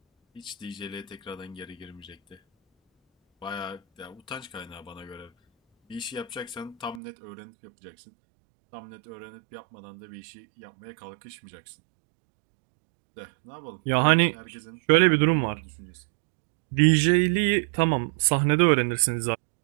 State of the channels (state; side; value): drops out; left; at 7.0 s